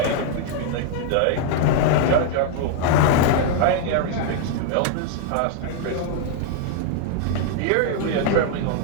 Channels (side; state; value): both; different; correlation 0.00